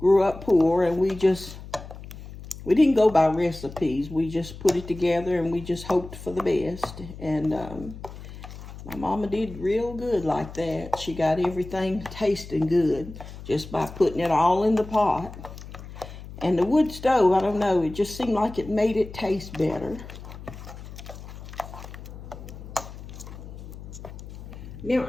up poor, and we didn't go by recipes. We just put it together and we just hoped for the best. And my mama did real good like that. She got everything tasting good just by putting it all in the pot. And the wood stove, I don't know, it just seemed like it made it taste better. Now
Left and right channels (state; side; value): noise; left; hum, 13 dB below the sound